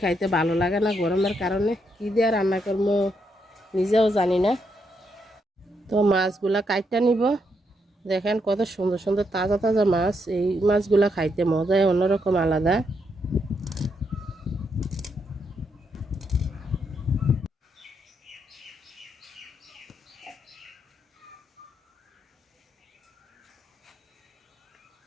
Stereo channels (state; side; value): normal; both; correlation 0.79